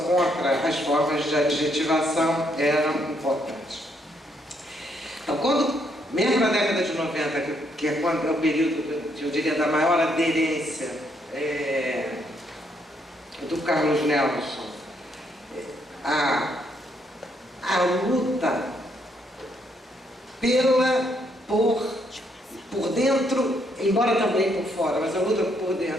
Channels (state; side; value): normal; both; correlation 0.73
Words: as formas de adjetivação era importante. Então, mesmo na década de 90, que é o período, eu diria, da maior aderência do Carlos Nelson, a luta por dentro, embora também por fora, mas a luta por